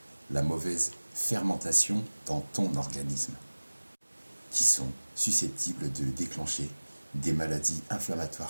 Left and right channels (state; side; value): inverted; both; correlation -1.00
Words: la mauvaise fermentation dans ton organisme, qui sont susceptibles de déclencher des maladies